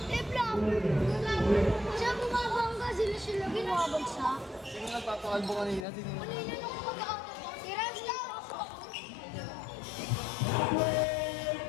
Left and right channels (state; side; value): drops out; right; at 5.9 s